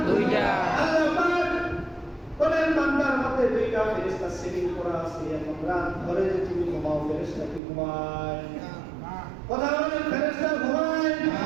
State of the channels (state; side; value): drops out; left; at 7.6 s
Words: দুইটা। আল্লাহ পাক বলেন বান্দার মধ্যে দুইটা ফেরেশতা সেটিং করা আছে। এখন রাত ধরে যে তুমি ঘুমাও, ফেরেশতা কি ঘুমায়? কথা বলেন, ফেরেশতা ঘুমায়?